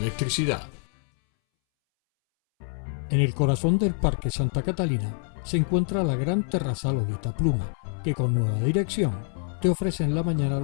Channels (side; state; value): right; silent; 61 dB below the other